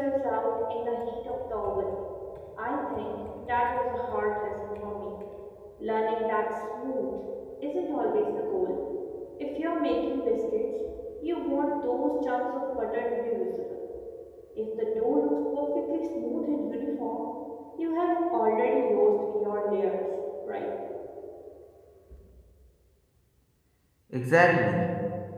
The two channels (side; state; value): both; identical; correlation 1.00